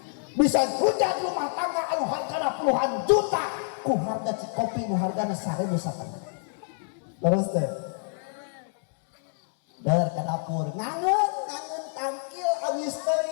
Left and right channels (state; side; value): silent; right; digital silence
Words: Bisa hujat rumah tangga anu hargana puluhan juta ku harga cikopi nu hargana 1.000 satengah. Terus teh der ka dapur ngangeun tangkil abis